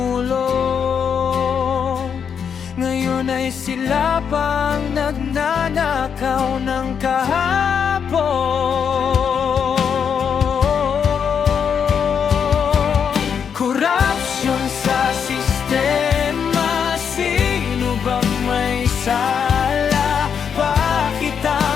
ngayon ay sila pang nagnanakaw ng kahapon. Korupsyon sa sistema, sino bang may sala? Bakit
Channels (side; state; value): right; quieter; 7.2 dB